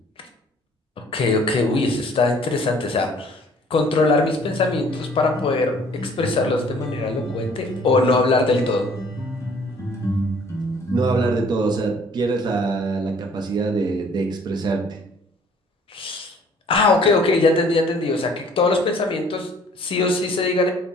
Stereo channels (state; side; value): normal; both; correlation 0.56